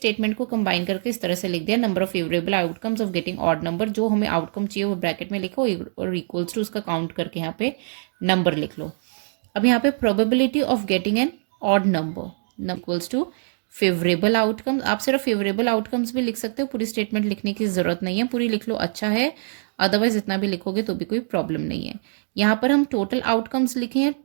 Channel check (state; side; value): silent; left; digital silence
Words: को कंबाइन करके इस तरह से लिख दिया, number of favourable outcomes of getting odd number, जो हमें आउटकम चाहिए वो ब्रैकेट में लिखो और इक्वल्स टू उसका काउंट करके यहाँ पे नंबर लिख लो। अब यहाँ पे probability of getting an odd number equals to favourable outcomes. आप सिर्फ फेवरेबल आउटकम्स भी लिख सकते हो, पूरी स्टेटमेंट लिखने की ज़रूरत नहीं है, पूरी लिख लो अच्छा है, अदरवाइज इतना भी लिखोगे तो भी कोई प्रॉब्लम नहीं है। यहाँ पर हम टोटल आउटकम्स लिखे हैं,